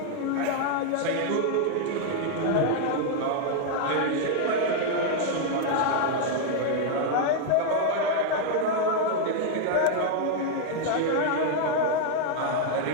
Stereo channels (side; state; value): both; different; correlation 0.00